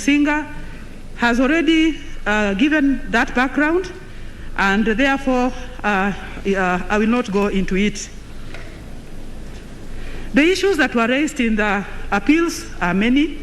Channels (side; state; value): both; identical; correlation 1.00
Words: has already given that background, and therefore I will not go into it. The issues that were raised in the appeals are many,